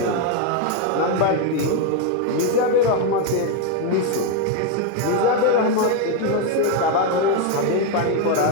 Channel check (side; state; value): both; different; correlation 0.01